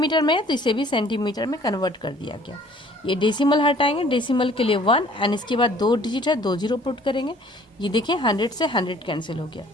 में है तो इसे भी सेंटीमीटर में कन्वर्ट कर दिया गया। ये डेसिमल हटाएंगे, डेसिमल के लिए 1 एंड इसके बाद 2 डिजिट है, 2 जीरो पुट करेंगे, ये देखें 100 से 100 कैंसिल हो गया।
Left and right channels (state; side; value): normal; both; correlation 0.55